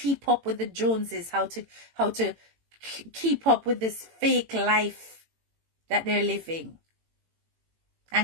up with the Joneses. How to keep up with this fake life that they're living.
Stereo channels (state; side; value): late; left; 18 ms